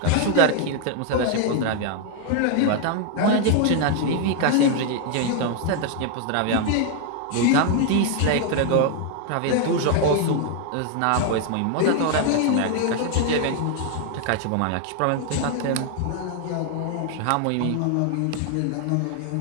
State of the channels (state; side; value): different; both; correlation 0.00